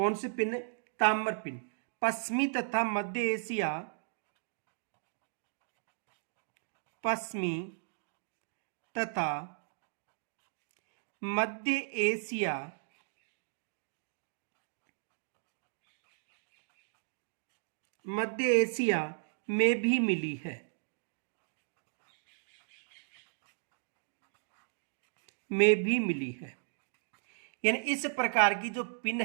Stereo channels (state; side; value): silent; left; digital silence